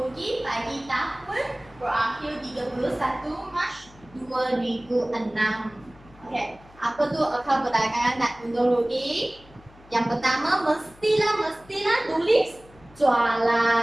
bagi tahun berakhir 31 Mac 2006. Oke, apa tuh akal belakangan dan untung rugi? Yang pertama mestilah tulis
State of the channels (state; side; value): noise; left; hum, 25 dB below the sound